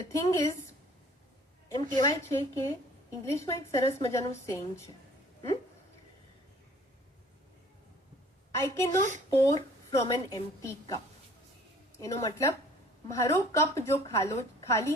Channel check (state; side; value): normal; both; correlation 0.53